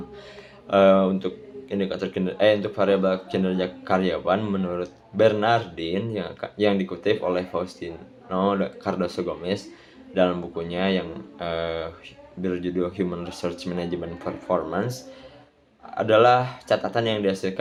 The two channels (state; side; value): identical; both; correlation 1.00